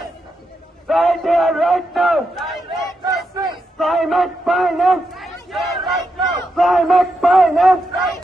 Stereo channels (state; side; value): normal; both; correlation 0.84